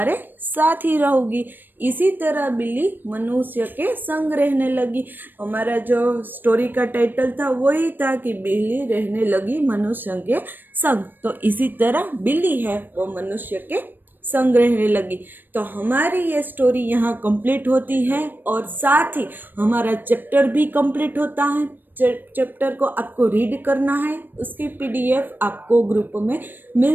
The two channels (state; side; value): late; left; 0.093 ms